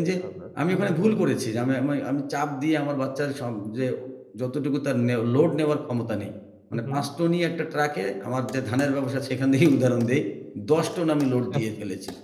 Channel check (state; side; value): identical; both; correlation 1.00